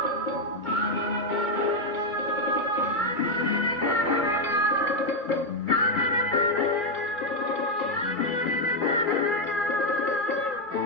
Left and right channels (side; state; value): right; late; 2.3 ms